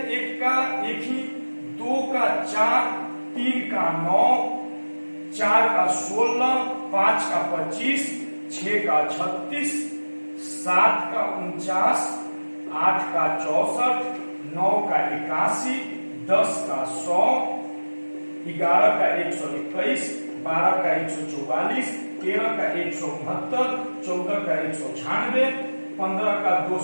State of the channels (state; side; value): inverted; both; correlation -1.00